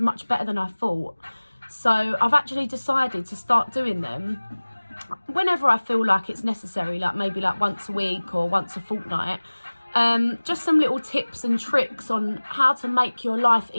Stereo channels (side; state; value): both; inverted; correlation -1.00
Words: better than I thought. So I've actually decided to start doing them whenever I feel like it's necessary, like maybe like once a week or once a fortnight. Just some little tips and tricks on how to make your life